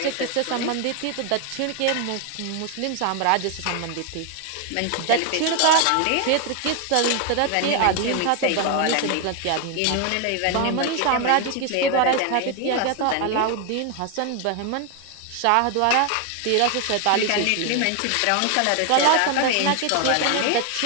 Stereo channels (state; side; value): different; both; correlation 0.01